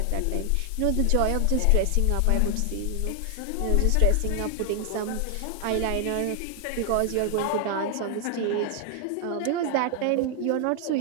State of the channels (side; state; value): both; different; correlation 0.00